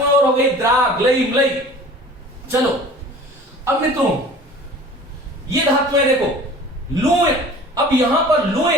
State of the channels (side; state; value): both; normal; correlation 0.44